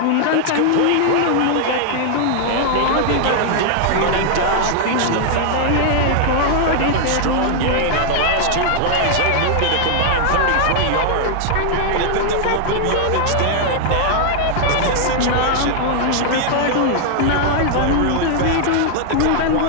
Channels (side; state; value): both; different; correlation 0.00